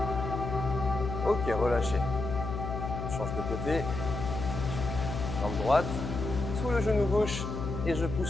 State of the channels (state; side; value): noise; left; hum, 5 dB below the sound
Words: Ok, relâchez. Je change de côté. Jambe droite, sous le genou gauche et je